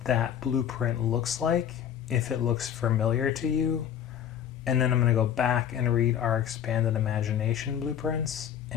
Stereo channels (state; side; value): quieter; right; 9.4 dB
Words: that blueprint looks like, if it looks familiar to you. And then I'm going to go back and read our expanded imagination blueprints.